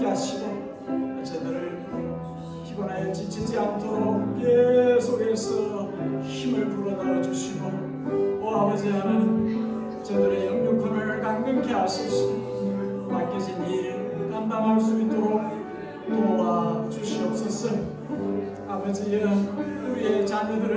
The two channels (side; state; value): both; identical; correlation 1.00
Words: 하시고 저들을 피곤하여 지치지 않도록 계속해서 힘을 불어넣어 주시고, 오 아버지 하나님, 저들의 영육혼을 강건케 하소서. 맡겨진 일 감당할 수 있도록 도와주시옵소서. 아버지여, 우리의